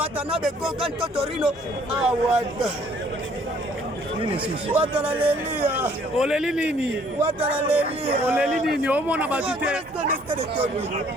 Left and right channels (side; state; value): both; normal; correlation 0.60